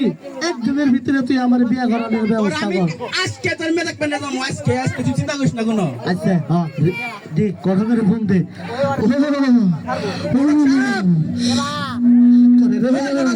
একদিনের ভিতরে তুই আমার বিয়া করানোর ব্যবস্থা কর আজকে তোর মেয়ে দেখবেন না আজকে আজকে তুই চিন্তা করিস না কোনো আচ্ছা হ্যাঁ দে কথা করে ফোন দে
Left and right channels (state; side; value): identical; both; correlation 1.00